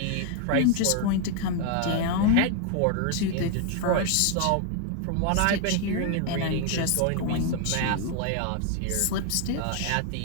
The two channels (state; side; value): different; both; correlation 0.00